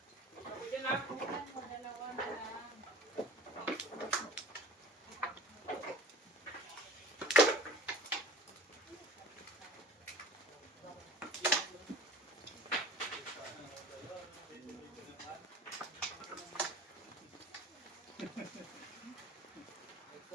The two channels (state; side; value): normal; both; correlation 0.42